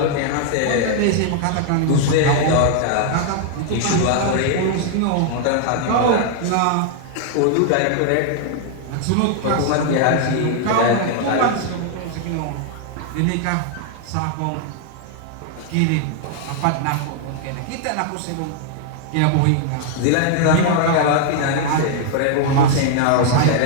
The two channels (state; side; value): different; both; correlation 0.00